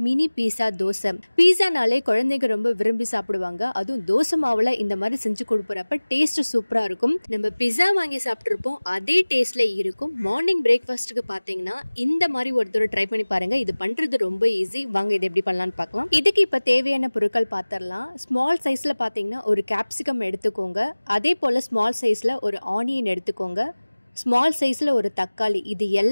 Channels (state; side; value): inverted; both; correlation -1.00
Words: மினி பீஸா தோசை. பீஸானாலே குழந்தைங்க ரொம்ப விரும்பி சாப்பிடுவாங்க. அதுவும் தோசை மாவுல இந்த மாதிரி செஞ்சு கொடுப்பறப்ப டேஸ்ட் சூப்பரா இருக்கும். நம்ம பீஸா வாங்கி சாப்பிட்டிருப்போம் அதே டேஸ்ட்ல இருக்கும். மார்னிங் பிரேக்ஃபாஸ்ட்க்கு பாத்தீங்கன்னா இந்த மாதிரி ஒரு தடவை ட்ரை பண்ணி பாருங்க. இது பண்றது ரொம்ப ஈஸி. வாங்க இது எப்படி பண்ணலாம்னு பார்க்கலாம். இதுக்கு இப்ப தேவையான பொருட்கள் பார்த்தறலாம். ஸ்மால் சைஸ்ல பாத்தீங்கன்னா ஒரு கேப்சிகம் எடுத்துக்கோங்க. அதே போல ஸ்மால் சைஸ்ல ஒரு ஆனியன் எடுத்துக்கோங்க. ஸ்மால் சைஸில் ஒரு தக்காளி, இது